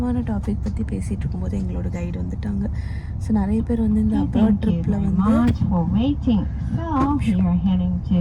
டாபிக் பற்றி பேசிகிட்டு இருக்கும்போது எங்களோட கைடு வந்துட்டாங்க. ஸோ நிறைய பேர் வந்து இந்த அப்ராட் ட்ரிப்பில் வந்து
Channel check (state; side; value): identical; both; correlation 1.00